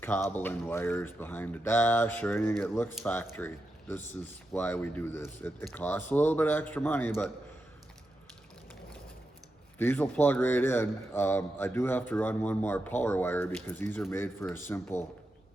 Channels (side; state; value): both; normal; correlation 0.88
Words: wires behind the dash or anything. It looks factory. This is why we do this. It costs a little bit extra money, but these will plug right in. I do have to run one more power wire because these are made for a simple